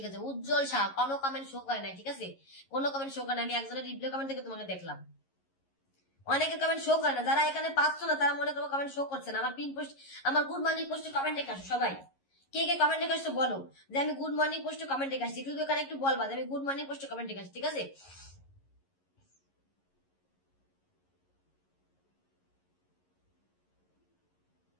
আছে। উজ্জ্বল শাহ কোনো কমেন্ট শো করে নাই, ঠিক আছে? কোনো কমেন্ট শো করে না। আমি একজনের রিপ্লাই কমেন্ট থেকে তোমাকে দেখলাম, অনেকের কমেন্ট শো করে না। যারা এখানে পাচ্ছ না তারা মনে করবো কমেন্ট শো করছে না। আমার পিন পোস্ট, আমার গুড মর্নিং পোস্টে কমেন্ট রেখে আসো সবাই। কে কে কমেন্ট রেখে আসছো বলো যে আমি গুড মর্নিং পোস্টে কমেন্ট রেখে আসছি। শুধু এখানে একটু বলবা যে আমি গুড মর্নিং পোস্টে কমেন্ট রেখে আসছি, ঠিক আছে?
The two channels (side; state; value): right; late; 11 ms